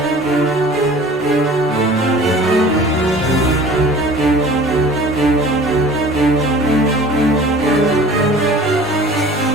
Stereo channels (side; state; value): both; normal; correlation 0.45